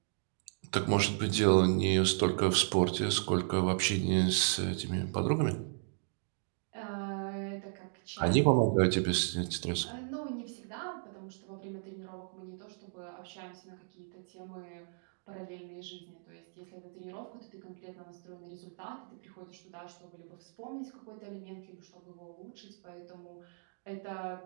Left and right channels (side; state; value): left; silent; digital silence